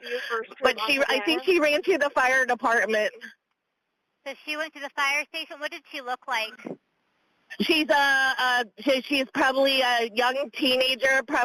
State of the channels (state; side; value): identical; both; correlation 1.00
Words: But I think she ran to the fire department. So she went to the fire station. What did she look like? She's she's probably a young teenager,